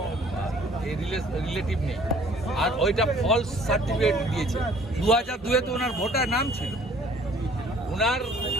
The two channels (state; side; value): normal; both; correlation 0.55